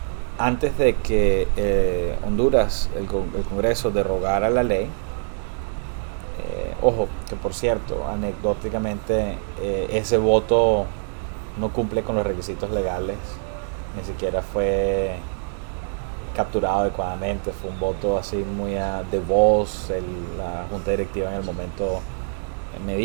Antes de que Honduras, el Congreso, derogara la ley, ojo, que por cierto, anecdóticamente, ese voto no cumple con los requisitos legales, ni siquiera fue capturado adecuadamente, fue un voto así muy de voz, la junta directiva en el momento, me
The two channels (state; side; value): silent; left; digital silence